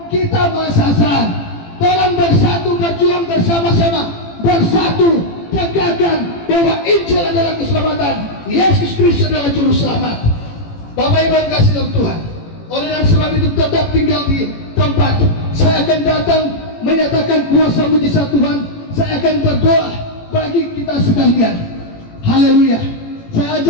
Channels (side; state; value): right; late; 18 ms